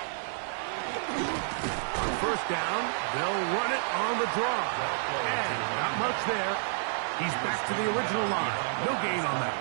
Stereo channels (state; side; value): silent; left; digital silence